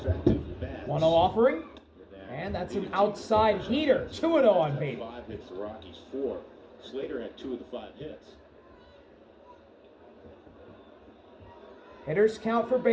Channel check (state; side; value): identical; both; correlation 1.00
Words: bats. 1-0 offering. And that's an outside heater. 2-0 on Beatty. 5 hits, the Rockies 4. Slater had 2 of the 5 hits. Hitters count for